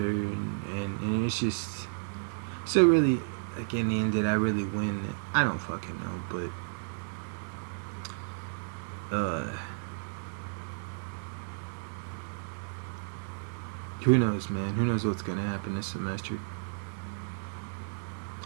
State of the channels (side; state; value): left; silent; digital silence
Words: and it's just so really, like, in the end, did I really win? I don't fucking know, but who knows, man? Who knows what's gonna happen this semester?